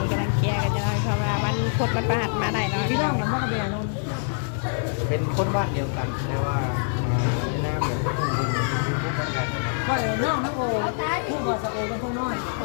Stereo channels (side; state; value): right; silent; digital silence